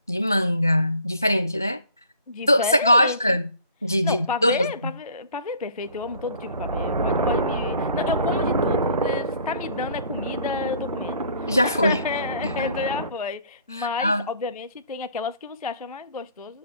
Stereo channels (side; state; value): both; inverted; correlation -0.54